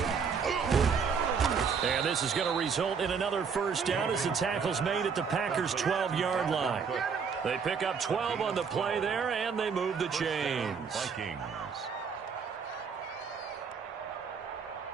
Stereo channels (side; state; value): left; quieter; 6.1 dB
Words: And this is going to result in another first down as the tackle's made at the Packers' 12-yard line. They pick up 12 on the play there, and they move the chains. Vikings.